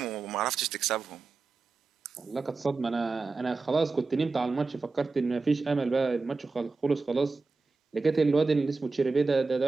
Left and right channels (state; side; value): quieter; left; 4.0 dB